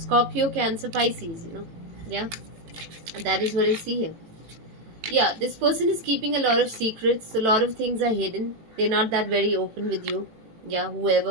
Cancer, Pisces, Yeah, that is what I see here. Yeah, this person is keeping a lot of secrets. A lot of things are hidden. They're not that very open with you. Yeah,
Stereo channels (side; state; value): left; late; 18 ms